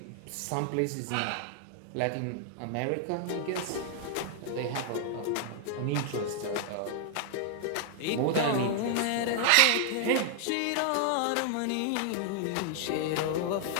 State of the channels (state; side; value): different; both; correlation 0.00